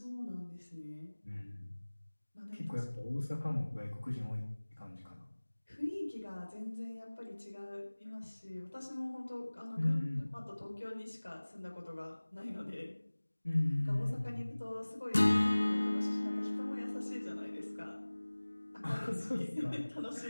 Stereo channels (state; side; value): inverted; both; correlation -1.00